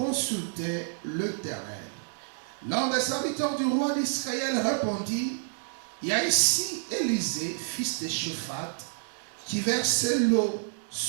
l'Éternel? L'un des serviteurs du roi d'Israël répondit, il y a ici Élisée, fils de Shaphat, qui versait l'eau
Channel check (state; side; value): silent; left; digital silence